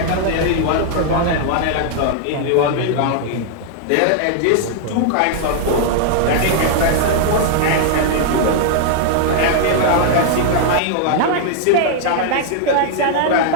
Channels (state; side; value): different; both; correlation -0.01